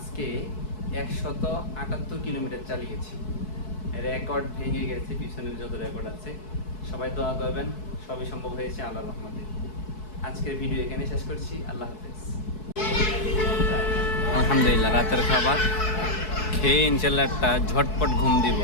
178 কিলোমিটার চালিয়েছি, রেকর্ড ভেঙে গেছে, পিছনের যত রেকর্ড আছে। সবাই দোয়া করবেন, সবই সম্ভব হয়েছে আল্লাহর রহমতে। আজকের ভিডিও এখানে শেষ করছি, আল্লাহ হাফেজ। আলহামদুলিল্লাহ, রাতের খাবার খেয়ে ইনশাল্লাহ একটা ঝটপট ঘুম দিব।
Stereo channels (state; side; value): late; right; 4.7 ms